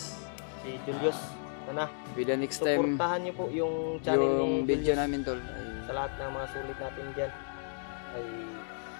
Si Julius. Sana With the next time suportahan niyo po yung channel yung ni video Julius. namin tol Sa ay lahat ng mga sulit natin dyan ay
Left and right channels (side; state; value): right; silent; digital silence